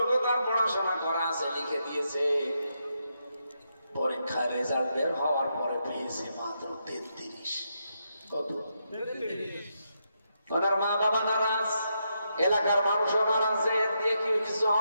তার পড়াশোনা করা আছে লিখে দিয়েছে। পরীক্ষার রেজাল্ট বের হওয়ার পরে পেয়েছে মাত্র 33। কত? ওনার মা বাবা নারাজ, এলাকার মানুষও নারাজ, এর দিয়ে কি কিছু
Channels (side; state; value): both; inverted; correlation -0.82